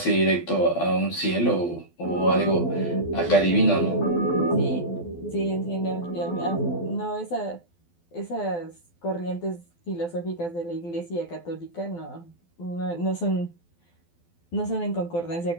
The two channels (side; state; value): right; late; 12 ms